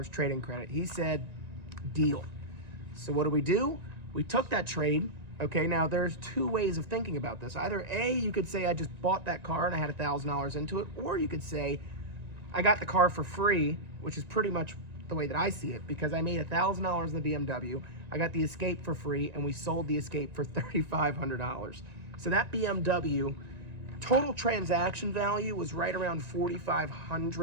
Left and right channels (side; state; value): left; late; 1.9 ms